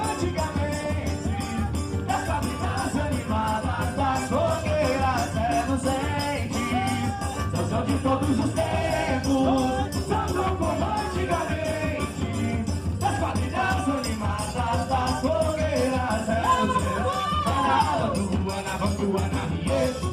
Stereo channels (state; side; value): identical; both; correlation 1.00